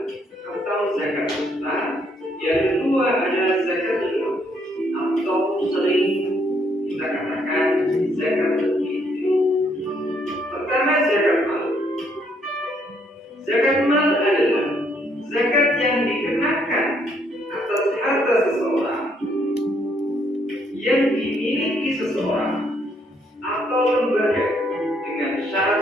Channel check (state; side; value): normal; both; correlation 0.70